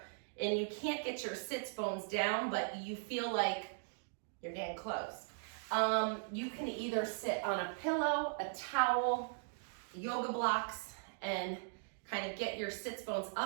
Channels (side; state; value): left; silent; digital silence